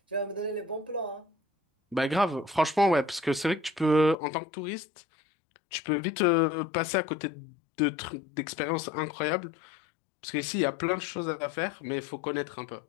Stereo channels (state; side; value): drops out; right; at 4.2 s